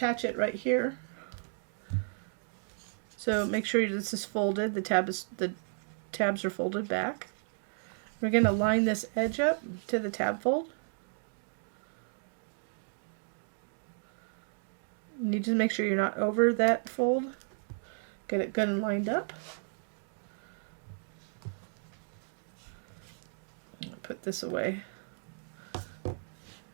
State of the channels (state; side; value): silent; left; digital silence